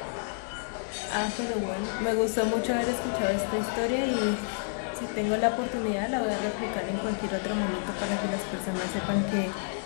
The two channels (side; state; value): right; silent; digital silence